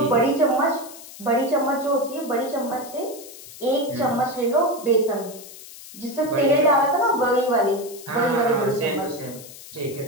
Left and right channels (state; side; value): noise; left; hiss, 16 dB below the sound